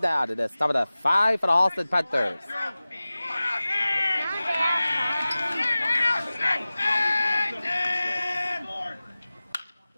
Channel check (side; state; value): both; inverted; correlation -0.97